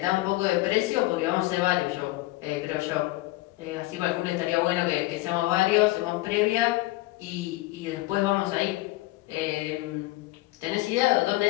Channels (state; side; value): quieter; right; 19.5 dB